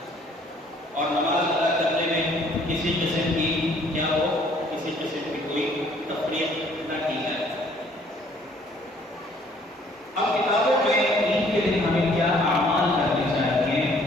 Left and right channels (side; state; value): both; normal; correlation 0.60